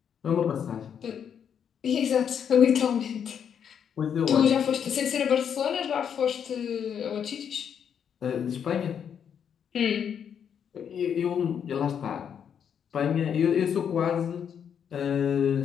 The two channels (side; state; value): right; quieter; 8.0 dB